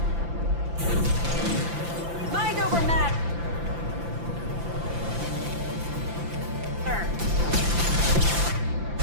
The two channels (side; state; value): left; late; 5.9 ms